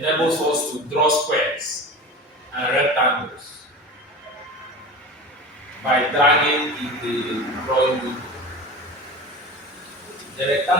us to draw squares and rectangles by dragging in the drawing window. The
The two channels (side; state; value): both; normal; correlation 0.32